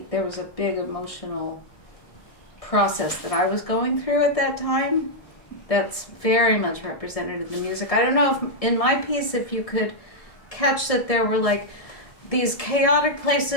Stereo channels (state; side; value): late; right; 1.7 ms